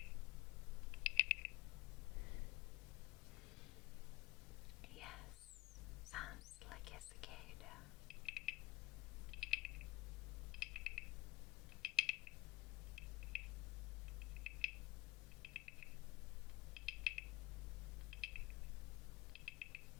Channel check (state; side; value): quieter; right; 19.0 dB